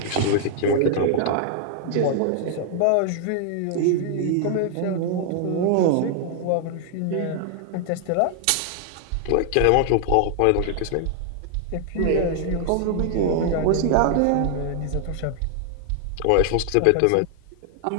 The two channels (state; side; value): different; both; correlation 0.00